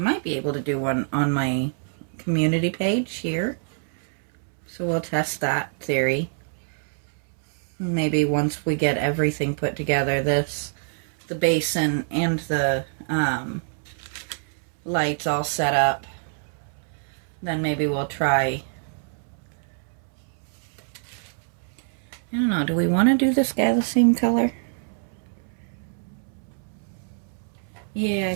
be able to do one on my community page here. So we'll test that theory. Maybe once we get everything put together, the basin and the lights all set up, then maybe we'll try. I don't know, do we want to do this guy the same color? Yeah, I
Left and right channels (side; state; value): left; silent; 61 dB below the other